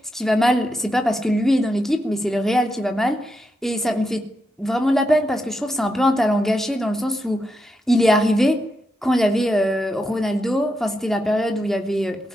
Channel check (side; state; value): both; normal; correlation 0.85